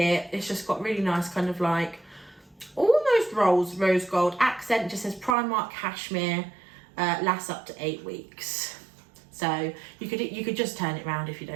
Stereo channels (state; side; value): drops out; left; at 5.4 s